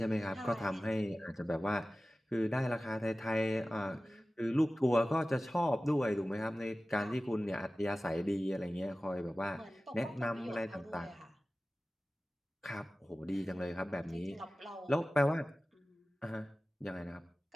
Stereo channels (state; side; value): normal; both; correlation 0.96